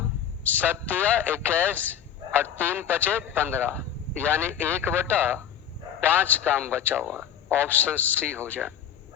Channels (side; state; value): right; quieter; 9.2 dB